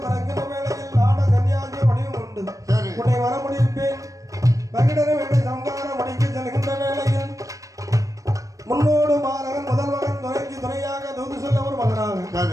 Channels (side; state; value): left; late; 0.16 ms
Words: பிறக்கின்ற வேளையில் ஆட கன்னியாகிய வடிவம் உண்டு சரி உன்னை வர முடிப்பேன் மகிடனை வேண்டி சம்கார முடிக்க செல்கின்ற வேளையில் முன்னோடு மாணவன் முதல் மகன் துணைக்கு துணையாக தூது சொல்ல ஒரு மகனாக